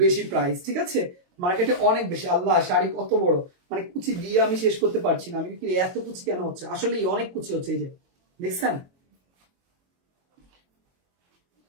বেশি প্রাইস, ঠিক আছে। মার্কেটে অনেক বেশি। আল্লাহ, শাড়ি কত বড়, মানে কুচি দিয়ে আমি শেষ করতে পারছি না। আমি এত কুচি কেন হচ্ছে, আসলে অনেক কুচি হচ্ছে, এই যে দেখছেন।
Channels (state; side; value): late; left; 22 ms